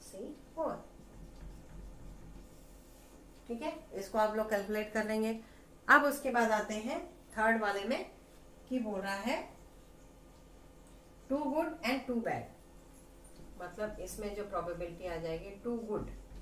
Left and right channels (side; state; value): both; identical; correlation 1.00